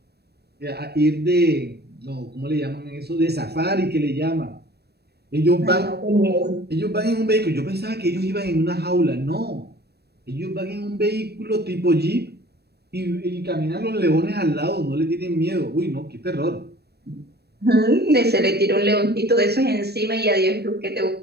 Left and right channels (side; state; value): left; late; 0.47 ms